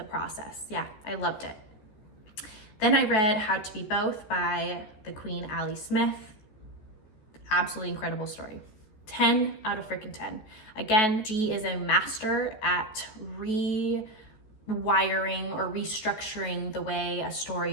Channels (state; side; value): late; right; 14 ms